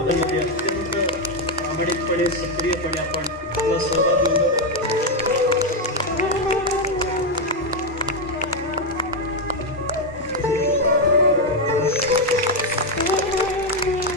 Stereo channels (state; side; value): normal; both; correlation 0.04